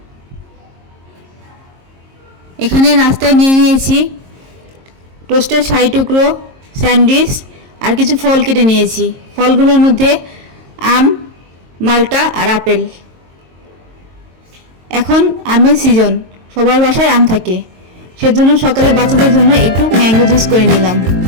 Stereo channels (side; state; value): left; late; 22 ms